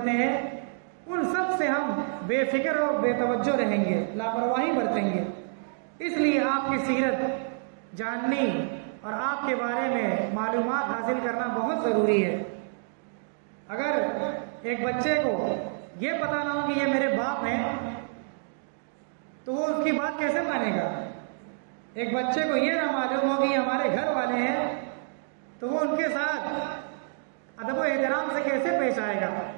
ہیں، ان سب سے ہم بے فکر اور بے توجہ رہیں گے، لاپرواہی برتیں گے۔ اس لیے آپ کی سیرت جاننی اور آپ کے بارے میں معلومات حاصل کرنا بہت ضروری ہے۔ اگر ایک بچے کو یہ پتہ نہ ہو کہ یہ میرے باپ ہیں تو وہ اس کی بات کیسے مانے گا؟ ایک بچے کو یہ نہ معلوم ہو کہ یہ ہمارے گھر والے ہیں تو وہ ان کے ساتھ ادب و احترام سے کیسے پیش آئے گا؟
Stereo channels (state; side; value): silent; left; digital silence